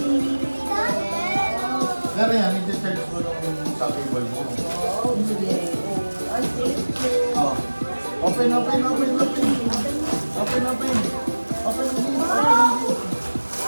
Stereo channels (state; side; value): inverted; both; correlation -1.00